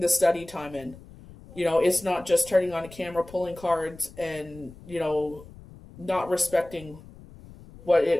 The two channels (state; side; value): noise; left; rumble, 19 dB below the sound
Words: study time in. You know, it's not just turning on a camera, pulling cards, and, you know, not respecting what it